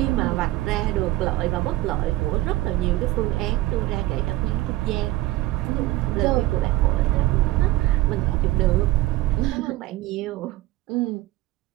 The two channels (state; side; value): quieter; left; 17.3 dB